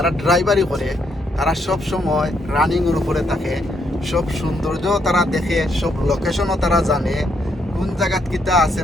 ড্রাইভারি করে তারা সব সময় রানিং এর উপরে থাকে, সব সৌন্দর্য তারা দেখে, সব লোকেশনও তারা জানে, কোন জায়গাত কিতা আছে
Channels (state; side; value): normal; both; correlation 0.75